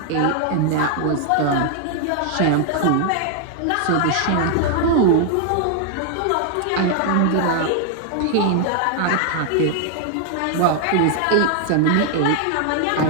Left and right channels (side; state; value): both; different; correlation 0.00